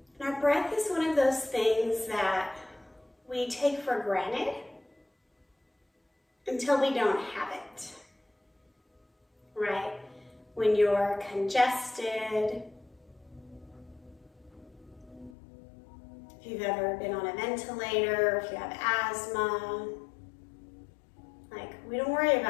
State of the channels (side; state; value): right; drops out; at 15.4 s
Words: And our breath is one of those things that we take for granted until we don't have it, right? When you're congested, if you've ever been on a ventilator, if you have asthma, we don't worry